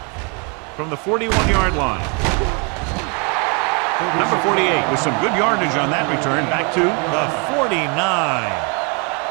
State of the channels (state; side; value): quieter; left; 34.1 dB